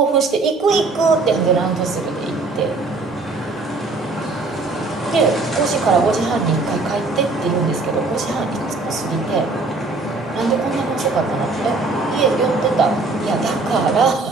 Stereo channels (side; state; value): left; quieter; 3.6 dB